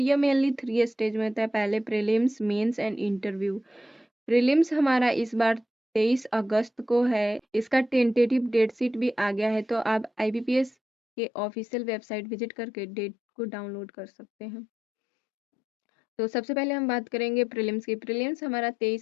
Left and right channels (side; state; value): right; drops out; at 10.7 s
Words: मेनली 3 स्टेज में होता है। पहले prelims, mains and interview. Prelims हमारा इस बार 23 अगस्त को है। इसका टेंटेटिव डेट शीट भी आ गया है, तो आप आईबीपीएस के ऑफिशियल वेबसाइट विजिट करके डेट को डाउनलोड कर सकते हैं। तो सबसे पहले हम बात करेंगे प्रीलिम्स की। प्रीलिम्स हमारा